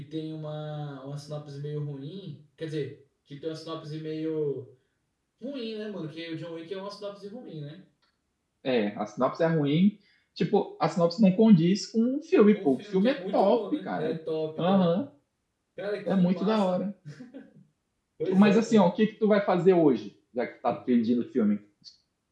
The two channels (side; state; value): both; identical; correlation 1.00